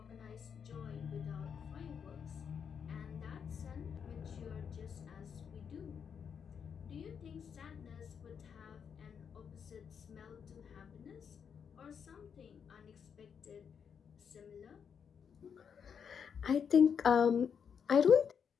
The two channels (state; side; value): quieter; right; 7.1 dB